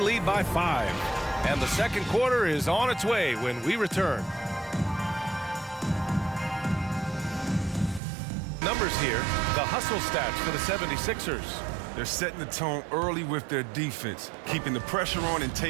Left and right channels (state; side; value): drops out; left; at 8.0 s